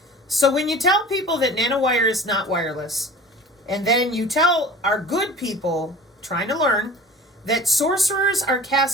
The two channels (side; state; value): both; normal; correlation 0.40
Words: So when you tell people that nanowire is not wireless, and then you tell our good people trying to learn that sorcerers are